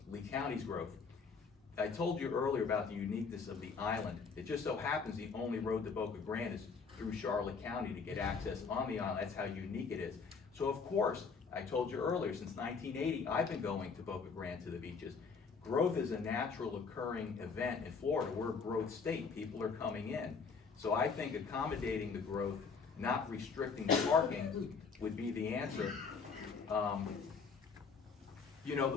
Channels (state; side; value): quieter; right; 5.2 dB